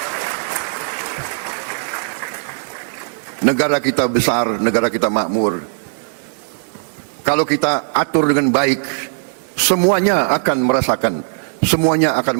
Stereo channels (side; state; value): left; silent; 67 dB below the other